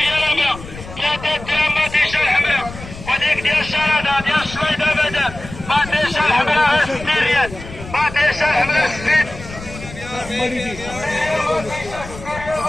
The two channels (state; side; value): noise; left; rumble, 14 dB below the sound